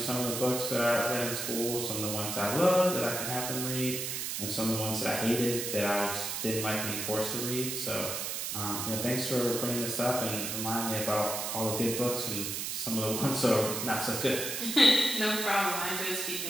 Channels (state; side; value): noise; right; hiss, 3 dB below the sound